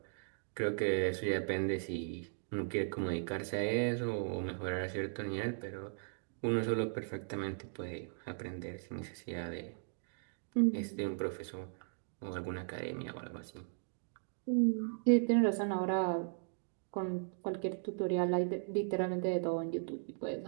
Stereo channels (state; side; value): silent; left; digital silence